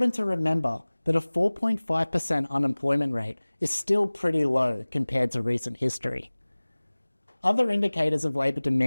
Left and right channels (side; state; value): both; inverted; correlation -1.00